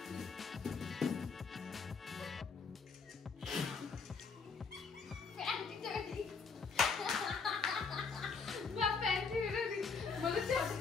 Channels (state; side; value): quieter; right; 5.0 dB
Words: প্যান্টি রেডি বাপ প্যান্টি রেডি বলেছে